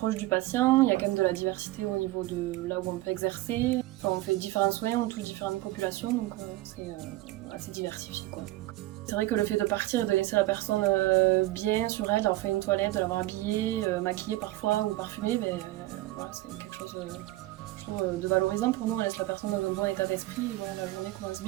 du patient, il y a quand même de la diversité au niveau de là où on peut exercer. Enfin, on fait différents soins, on touche différentes populations donc c'est assez diversifié quoi. C'est vrai que le fait de partir et de laisser la personne bien sur elle, d'avoir fait une toilette, de l'avoir habillée, maquillée parfois ou parfumée, voilà, c'est quelque chose de valorisant pour nous, on laisse la personne dans un bon état d'esprit et voilà, la journée commence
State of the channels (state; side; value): quieter; left; 17.6 dB